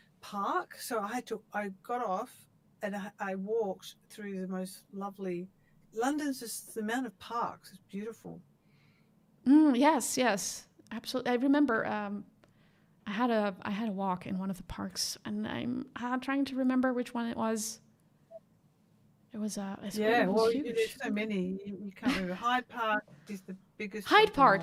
park. So I got off and I walked through the most lovely. London's just the amount of parks is beautiful. Yes, absolutely. I remember. I had a walk in one of the parks, and I'm trying to remember which one it was. It was Yeah, it was well, there's huge. so many. You can't remember. Hyde Park is the biggest Hyde of them Park,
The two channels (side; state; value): both; identical; correlation 1.00